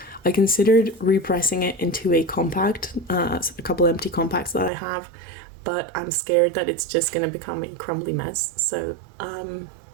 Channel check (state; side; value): drops out; left; at 4.7 s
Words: I considered repressing it into a compact, a couple empty compacts that I have, but I'm scared that it's just going to become a crumbly mess. So